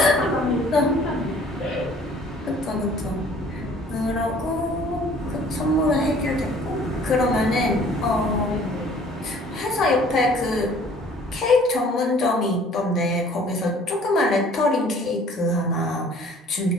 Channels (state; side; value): normal; both; correlation 0.54